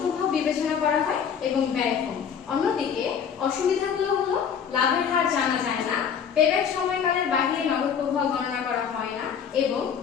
প্রভাব বিবেচনা করা হয় এবং ব্যয় কম। অন্যদিকে অসুবিধাগুলো হলো লাভের হার জানা যায় না, পেব্যাক সময়কালের বাইরে নগদ প্রভাব গণনা করা হয় না এবং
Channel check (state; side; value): quieter; right; 7.5 dB